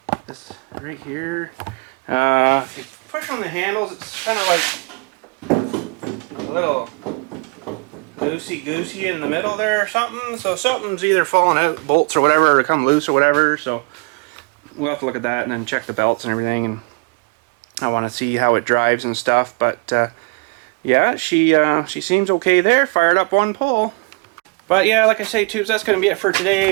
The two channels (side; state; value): left; quieter; 31.1 dB